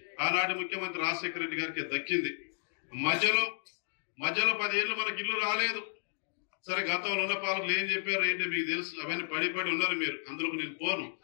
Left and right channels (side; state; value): right; silent; digital silence